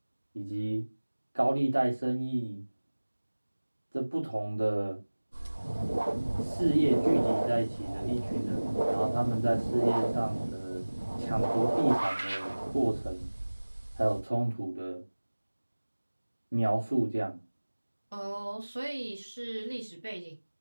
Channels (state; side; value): inverted; both; correlation -1.00